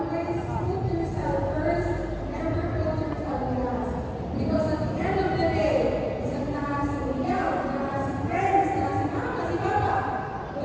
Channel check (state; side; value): identical; both; correlation 1.00